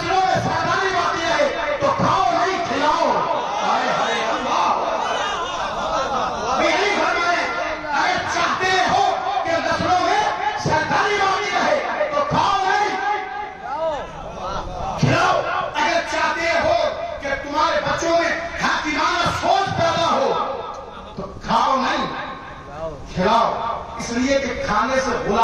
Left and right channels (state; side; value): identical; both; correlation 1.00